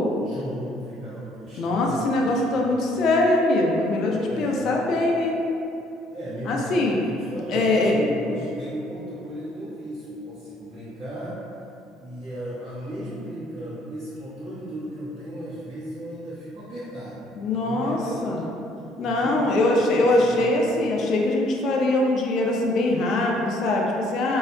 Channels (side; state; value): both; normal; correlation 0.64